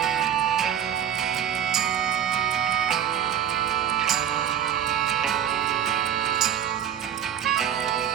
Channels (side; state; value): left; quieter; 9.6 dB